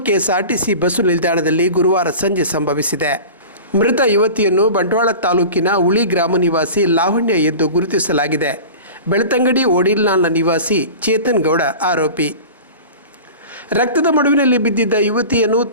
ಕೆಎಸ್ಆರ್ಟಿಸಿ ಬಸ್ಸು ನಿಲ್ದಾಣದಲ್ಲಿ ಗುರುವಾರ ಸಂಜೆ ಸಂಭವಿಸಿದೆ. ಮೃತ ಯುವತಿಯನ್ನು ಬಂಟ್ವಾಳ ತಾಲೂಕಿನ ಉಳಿ ಗ್ರಾಮ ನಿವಾಸಿ ಲಾವಣ್ಯ ಎಂದು ಗುರುತಿಸಲಾಗಿದೆ. ಬೆಳ್ತಂಗಡಿ ಓಡಿಲ್ನಾಳ್ನ ನಿವಾಸಿ ಚೇತನ್ ಗೌಡ ಆರೋಪಿ. ರಕ್ತದ ಮಡುವಿನಲ್ಲಿ ಬಿದ್ದಿದ್ದ ಯುವತಿಯನ್ನು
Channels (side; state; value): both; inverted; correlation -0.36